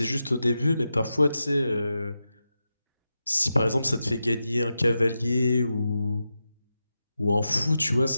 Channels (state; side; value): inverted; both; correlation -0.90